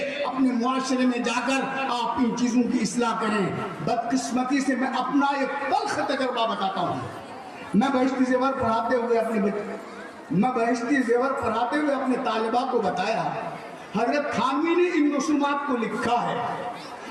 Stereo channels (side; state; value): both; identical; correlation 1.00